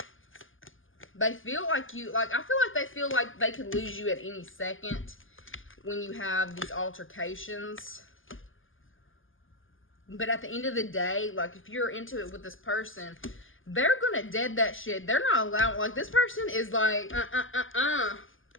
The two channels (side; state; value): right; late; 0.58 ms